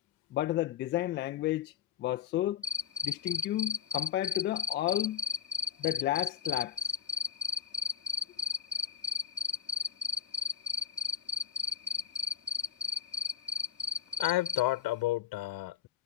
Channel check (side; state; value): right; quieter; 9.1 dB